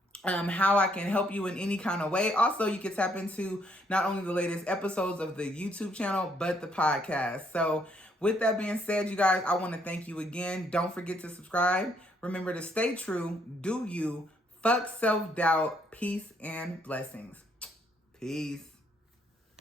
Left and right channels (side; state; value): both; normal; correlation 0.70